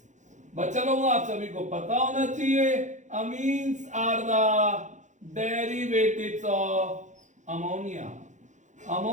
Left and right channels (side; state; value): left; late; 0.35 ms